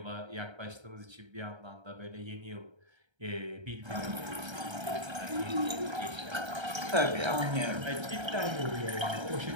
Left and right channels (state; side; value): late; left; 1.3 ms